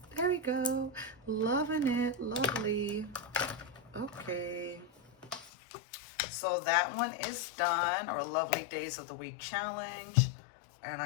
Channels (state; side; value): drops out; right; at 5.5 s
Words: There we go. Loving it. Lovely. Okay. So that one is done, our Lovely Days of the Week challenge. And